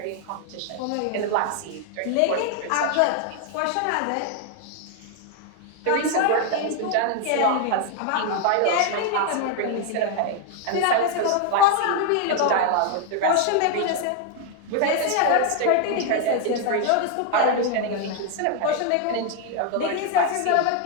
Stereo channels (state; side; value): different; both; correlation 0.01